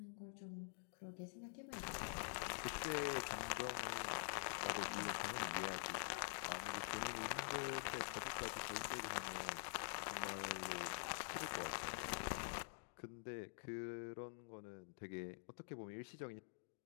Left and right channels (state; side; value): silent; right; digital silence